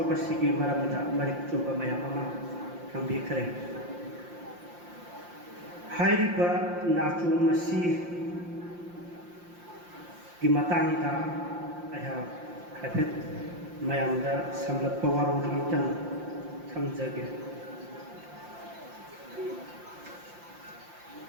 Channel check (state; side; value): late; left; 5.7 ms